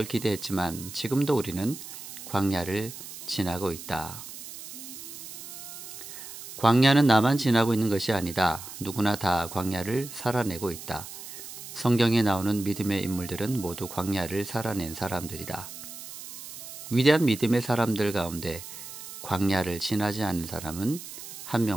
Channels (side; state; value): right; noise; hiss, 12 dB below the sound